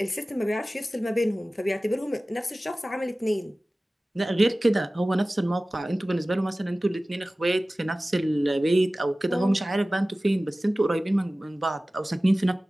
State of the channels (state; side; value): normal; both; correlation 0.97